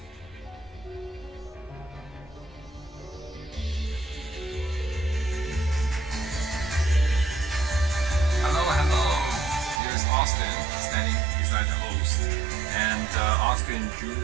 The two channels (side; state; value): left; drops out; at 9.8 s